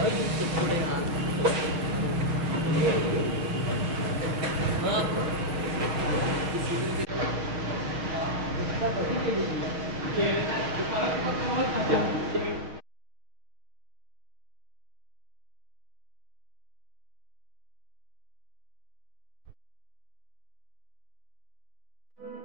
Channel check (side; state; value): left; late; 6.4 ms